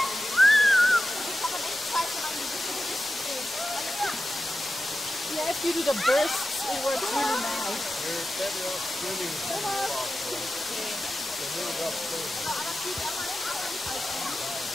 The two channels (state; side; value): normal; both; correlation 0.92